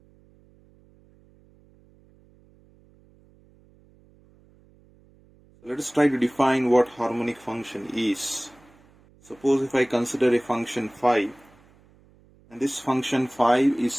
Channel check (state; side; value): noise; right; hum, 29 dB below the sound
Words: So let us try to define what harmonic function is. Suppose if I consider a function phi, and this function phi is